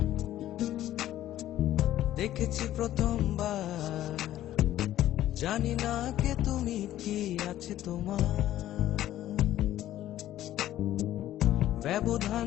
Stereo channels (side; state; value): right; quieter; 13.3 dB